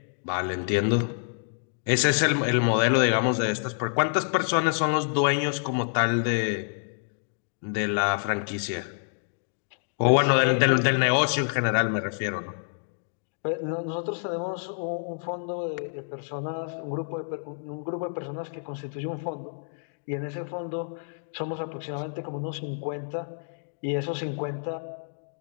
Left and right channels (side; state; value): right; silent; digital silence